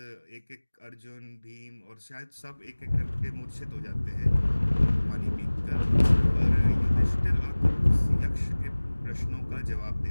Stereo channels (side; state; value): both; inverted; correlation -1.00